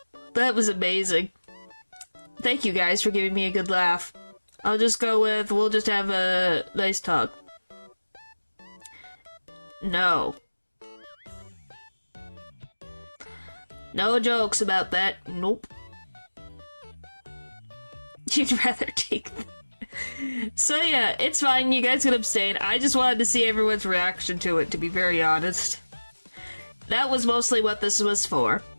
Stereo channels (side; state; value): both; inverted; correlation -1.00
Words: That was amazing. Thank you guys for giving me a good laugh. I'll just go with, we'll just have a nice talk. No. No jokes about that. Nope. You'd rather take them. So yeah, it's fine, you guys can abstain. I just wanted to see everyone's reaction to it, to be very honest. That was mostly what this was for.